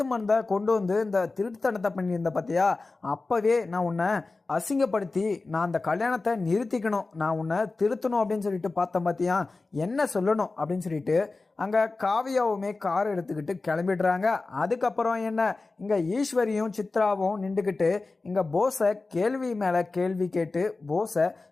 மருந்தை கொண்டு வந்து இந்த திருட்டுத்தனத்தை பண்ணியிருந்த பார்த்தியா, அப்போவே நான் உன்னை அசிங்கப்படுத்தி நான் அந்த கல்யாணத்தை நிறுத்திக்கணும், நான் உன்னை திருத்தணும் அப்படின்னு சொல்லிட்டு பார்த்தேன். பார்த்தியா என்ன சொல்லணும் அப்படின்னு சொல்லிட்டு அங்கே காவியாவுமே கார் எடுத்துக்கிட்டு கிளம்பிடுறாங்க. அதுக்கப்புறம் என்ன இங்கே ஈஸ்வரியும் சித்ராவும் நின்றுக்கிட்டு இங்கே போஸை கேள்வி மேலே கேள்வி கேட்டு போஸை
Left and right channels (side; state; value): right; quieter; 3.6 dB